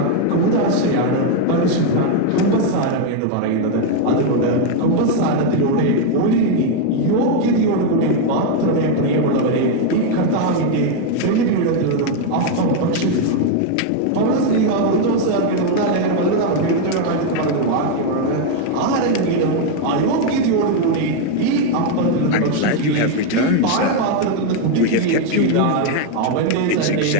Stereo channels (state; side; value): different; both; correlation 0.01